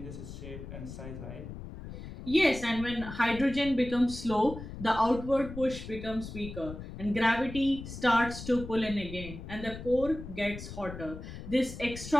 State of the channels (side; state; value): left; noise; rumble, 11 dB below the sound